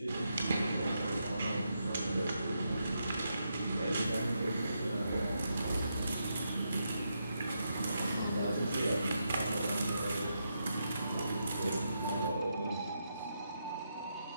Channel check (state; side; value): inverted; both; correlation -0.83